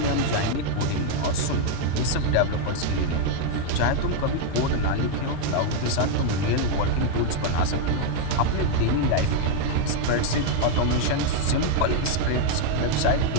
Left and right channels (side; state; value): both; different; correlation 0.00